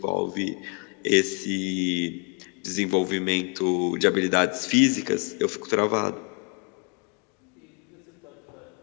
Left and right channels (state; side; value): quieter; right; 36.4 dB